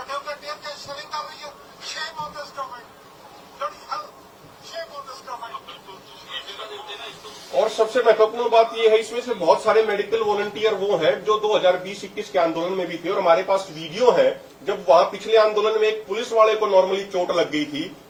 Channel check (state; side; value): identical; both; correlation 1.00